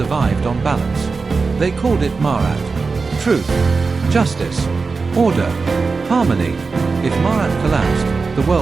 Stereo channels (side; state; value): left; quieter; 4.4 dB